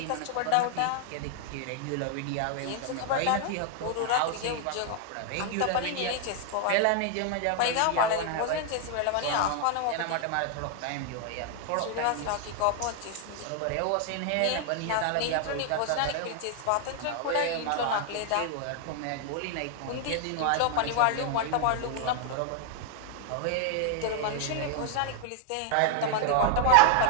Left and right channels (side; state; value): both; different; correlation 0.00